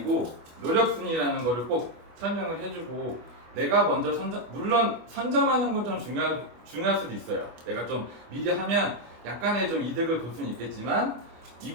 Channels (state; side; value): late; left; 25 ms